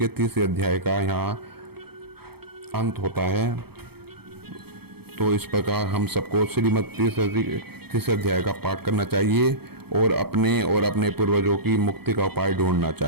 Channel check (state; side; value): late; left; 0.96 ms